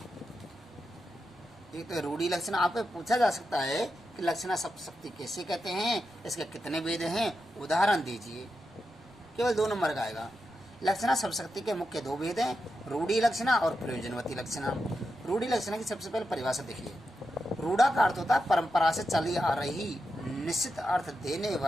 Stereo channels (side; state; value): left; noise; rumble, 29 dB below the sound